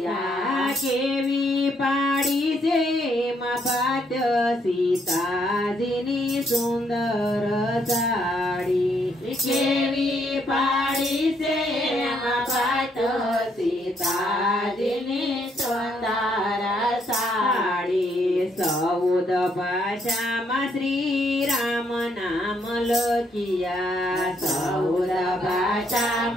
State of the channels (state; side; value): normal; both; correlation 0.72